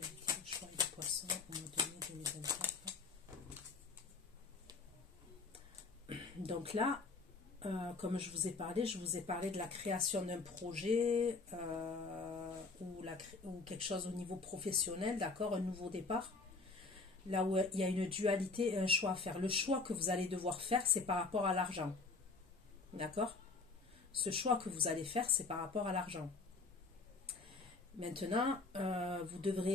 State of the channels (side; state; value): right; quieter; 4.0 dB